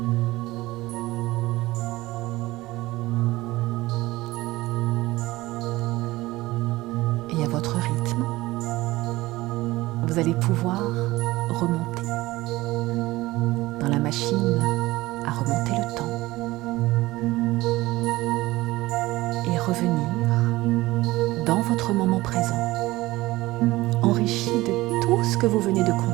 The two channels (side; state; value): left; quieter; 19.0 dB